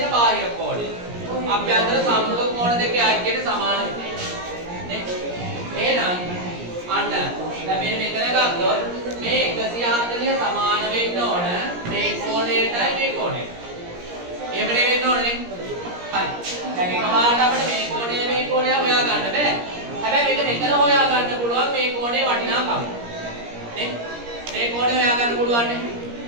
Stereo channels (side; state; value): left; late; 17 ms